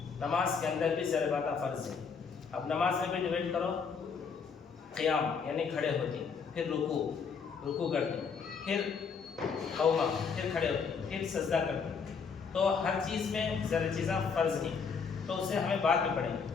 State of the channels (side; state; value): right; quieter; 5.7 dB